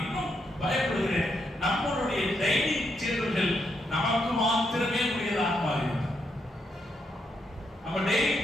இன்னும் பயப்படுகிறேன். நம்மளுடைய டைனிங் டேபிள்கள் நமக்கு மாத்திரமே உரியதாக மாறிவிட்டது. நம்ம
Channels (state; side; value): normal; both; correlation 0.79